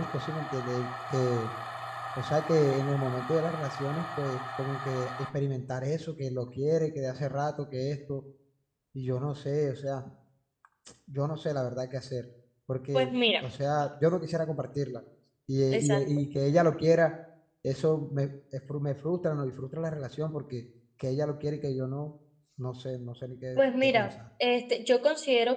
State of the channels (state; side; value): identical; both; correlation 1.00